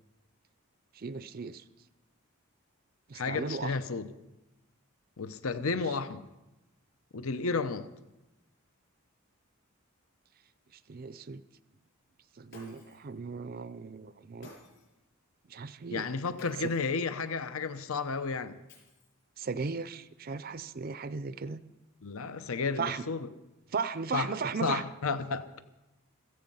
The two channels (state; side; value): normal; both; correlation -0.01